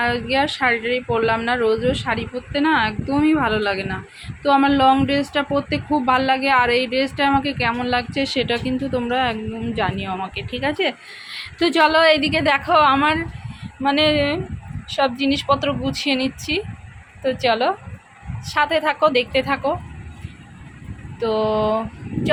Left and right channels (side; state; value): both; identical; correlation 1.00